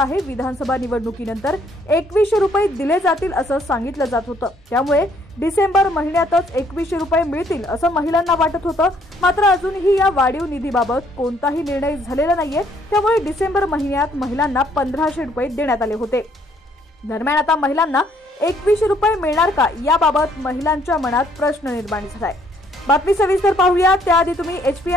विधानसभा निवडणुकीनंतर 2100 रुपये दिले जातील असं सांगितलं जात होतं। त्यामुळे डिसेंबर महिन्यातच 2100 रुपये मिळतील असं महिलांना वाटत होतं। मात्र अजूनही या वाढीव निधीबाबत कोणताही निर्णय झालेला नाहीये। त्यामुळे डिसेंबर महिन्यात महिलांना 1500 रुपये देण्यात आले होते। दरम्यान आता महिलांना 2100 रुपये मिळणार का याबाबत महिलांच्या मनात प्रश्न निर्माण झालाय। बातमी सविस्तर पाहूया। त्याआधी तुम्ही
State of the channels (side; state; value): both; normal; correlation 0.65